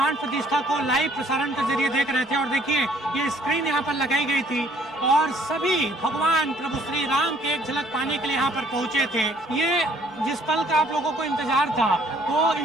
प्रतिष्ठा को लाइव प्रसारण के जरिए देख रहे थे। और देखिए, ये स्क्रीन यहाँ पर लगाई गई थी और सभी भगवान प्रभु श्री राम की एक झलक पाने के लिए यहाँ पर पहुंचे थे। ये जिस पल का आप लोगों को इंतजार था, वो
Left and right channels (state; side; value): normal; both; correlation 0.61